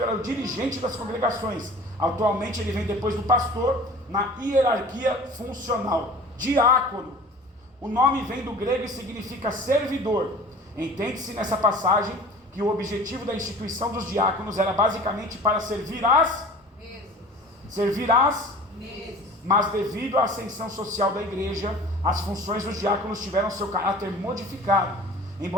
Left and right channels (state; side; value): normal; both; correlation 0.43